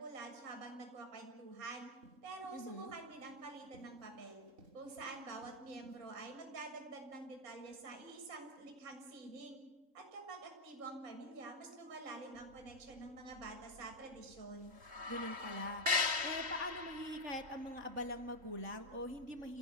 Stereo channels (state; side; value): late; left; 3.7 ms